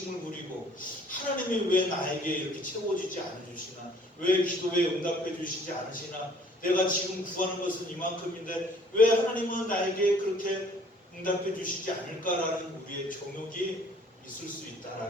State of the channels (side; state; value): both; normal; correlation 0.56